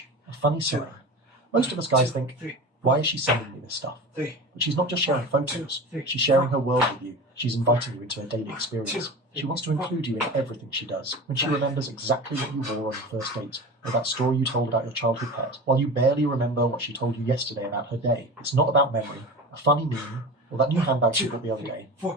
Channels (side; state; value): both; normal; correlation 0.31